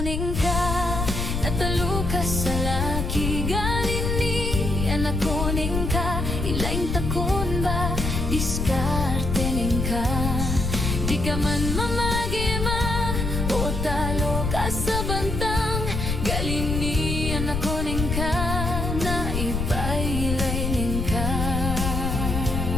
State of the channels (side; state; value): left; noise; rumble, 2 dB below the sound